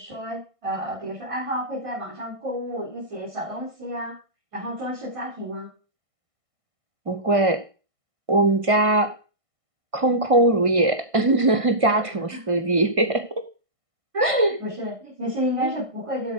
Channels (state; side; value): late; left; 1.5 ms